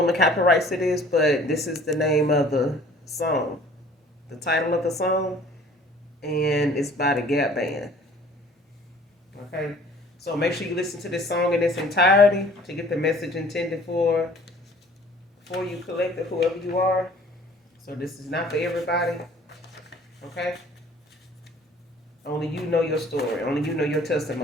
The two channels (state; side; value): normal; both; correlation 0.52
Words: the copyrights to this, but this is the name of the song, the title of the song, and it's by the Gap Band. Okay, so make sure you listen to this song in its entirety to get the message intended for you, collective, whoever you are. So this is not for everybody. Okay, only you know your story. Only you know your